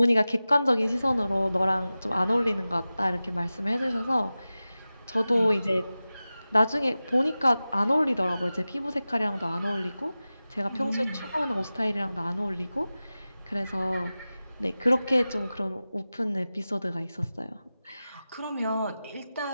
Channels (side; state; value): both; inverted; correlation -0.96